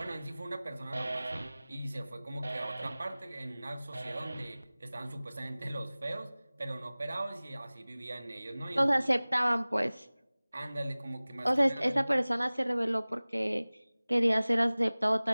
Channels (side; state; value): both; inverted; correlation -0.99